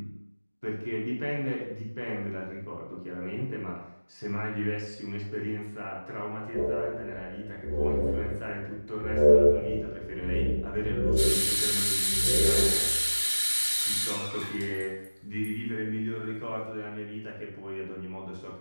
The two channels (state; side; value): inverted; both; correlation -1.00